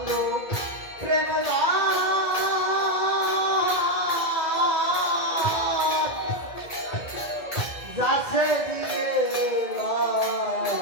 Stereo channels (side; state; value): right; late; 2.2 ms